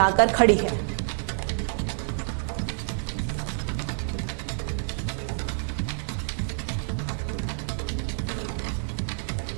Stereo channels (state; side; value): silent; left; 60 dB below the other